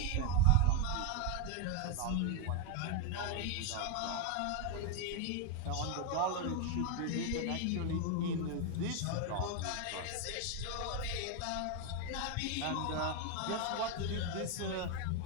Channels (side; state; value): both; different; correlation 0.02